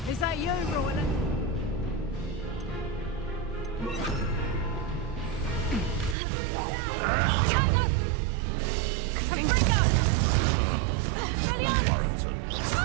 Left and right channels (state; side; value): drops out; left; at 6.2 s